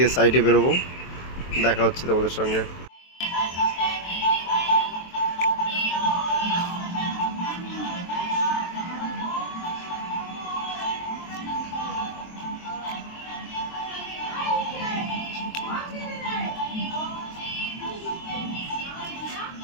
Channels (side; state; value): right; late; 23 ms